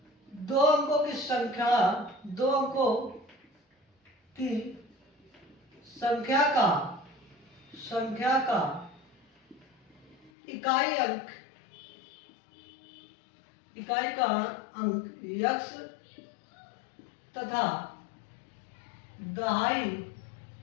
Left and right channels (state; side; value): drops out; right; at 10.3 s